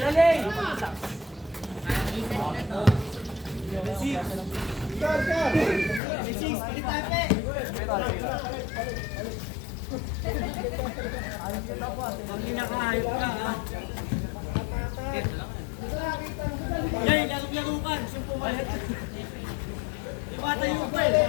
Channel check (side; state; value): right; drops out; at 6.0 s